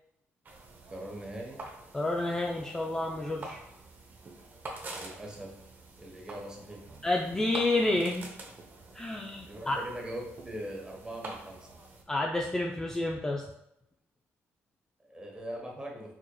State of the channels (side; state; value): both; normal; correlation 0.82